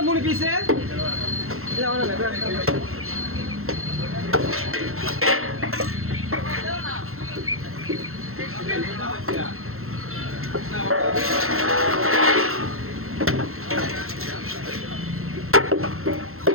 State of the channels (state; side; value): late; left; 0.62 ms